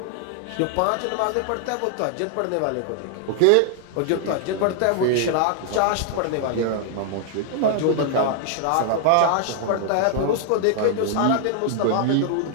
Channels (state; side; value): different; both; correlation 0.00